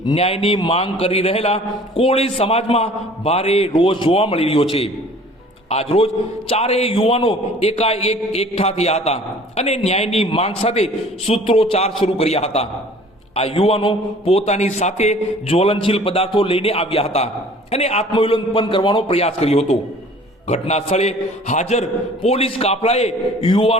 ન્યાયની માંગ કરી રહેલા કોળી સમાજમાં ભારે રોષ જોવા મળી રહ્યો છે। આજરોજ 4 યુવાનો એકાએક એકઠા થયા હતા અને ન્યાયની માંગ સાથે સૂત્રોચ્ચાર શરૂ કર્યા હતા। આ યુવાનો પોતાની સાથે જ્વલનશીલ પદાર્થો લઈને આવ્યા હતા અને આત્મવિલોપન કરવાનો પ્રયાસ કર્યો હતો। ઘટના સ્થળે હાજર પોલીસ કાફલાએ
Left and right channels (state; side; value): normal; both; correlation 0.49